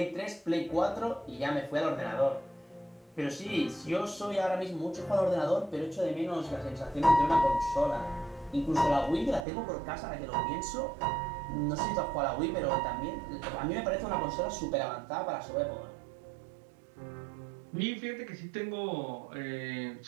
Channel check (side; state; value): left; drops out; at 9.5 s